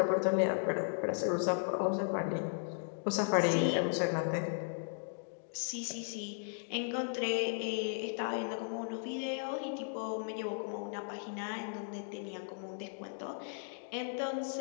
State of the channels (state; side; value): silent; right; digital silence